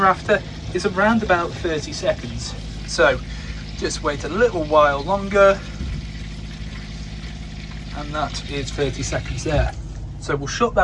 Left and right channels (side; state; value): both; identical; correlation 1.00